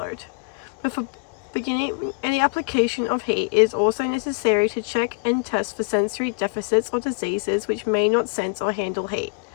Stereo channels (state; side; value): quieter; right; 35.5 dB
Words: Before beginning any application of heat, it is also necessary to check and test for sensory deficits or diseases which may not sense or handle heat.